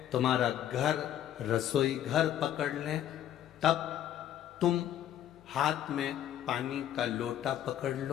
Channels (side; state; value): right; quieter; 11.2 dB